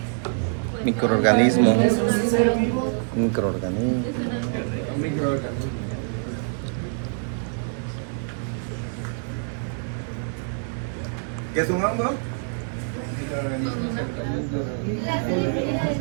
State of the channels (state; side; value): silent; left; 62 dB below the other